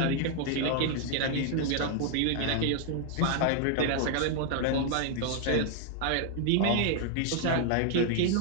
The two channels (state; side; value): different; both; correlation 0.00